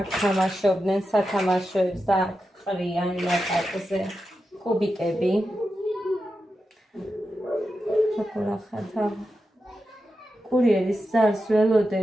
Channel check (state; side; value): normal; both; correlation 0.90